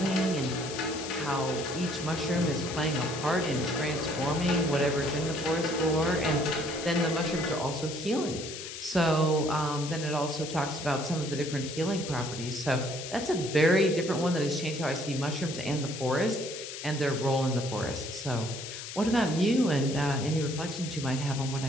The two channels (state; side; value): noise; left; hiss, 9 dB below the sound